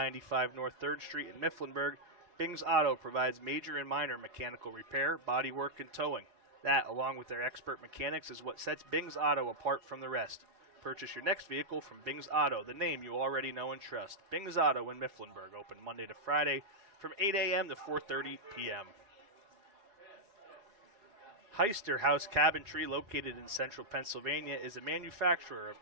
North 3rd Street in Mifflinburg, Bing's Auto provides major and minor mechanical repair, body work, and towing. That, along with their expert mechanics, is what sets Bing's Auto apart from the rest. Purchase your next vehicle from Bing's Auto, the name you already know and trust. Bing's Auto in Mifflinburg, open Monday to Friday from 8 a.m. to 4:30 p.m. Heister House Cabinetry, located in central Pennsylvania, is a manufacturer of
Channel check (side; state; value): left; late; 4.8 ms